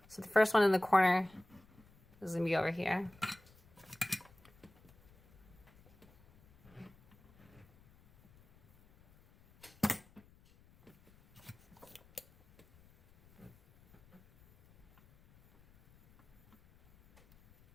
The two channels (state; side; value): noise; left; rumble, 28 dB below the sound